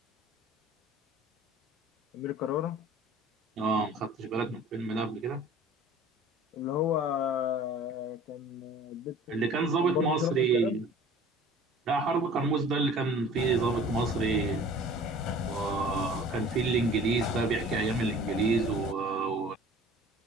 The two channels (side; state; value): both; normal; correlation 0.46